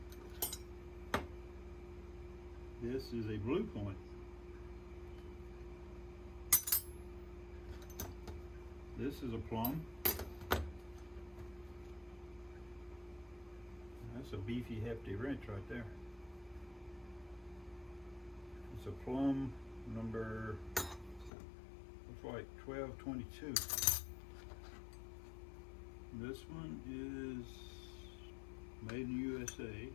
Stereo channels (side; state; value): right; drops out; at 21.3 s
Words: This is a Blue Point. This is a Plum. That's a beefy, hefty wrench right there. It's a Plum number, looks like 1222. This one is made in the USA. It